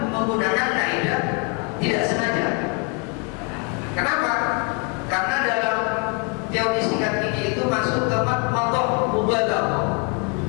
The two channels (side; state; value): right; quieter; 32.4 dB